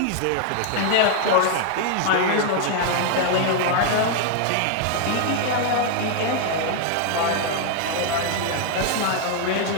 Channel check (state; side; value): different; both; correlation 0.00